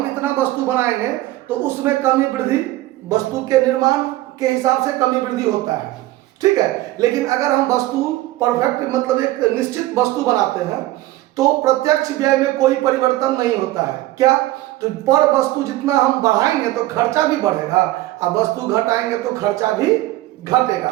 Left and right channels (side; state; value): left; quieter; 16.7 dB